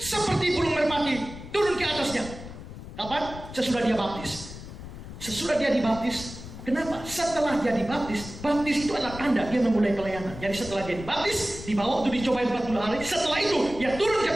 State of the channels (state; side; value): noise; left; rumble, 13 dB below the sound